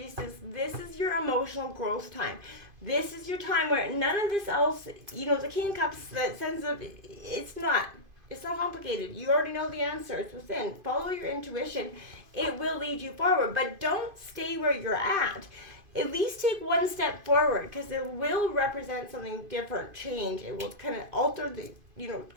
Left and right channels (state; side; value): late; left; 2.5 ms